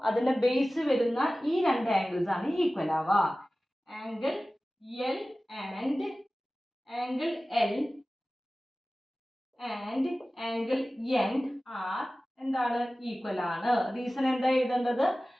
അതിൻ്റെ ബേസ് വരുന്ന ഈ രണ്ട് ആംഗിൾസ് ആണ് ഈക്വൽ ആവുക. Angle L and angle L and angle N are എന്താണ് ഈക്വൽ ആണ്. റീസൺ എന്താ എഴുതേണ്ടത്,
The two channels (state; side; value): normal; both; correlation 0.97